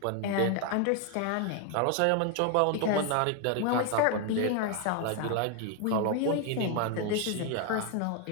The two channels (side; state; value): both; different; correlation 0.00